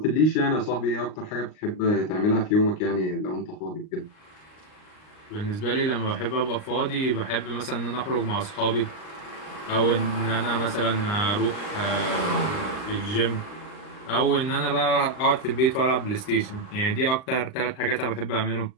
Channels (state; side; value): late; right; 38 ms